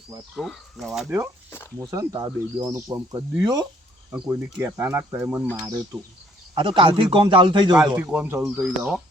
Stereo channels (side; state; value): both; normal; correlation 0.63